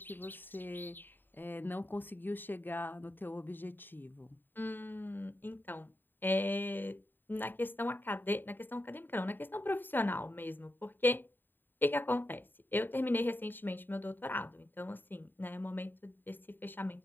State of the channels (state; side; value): late; right; 0.093 ms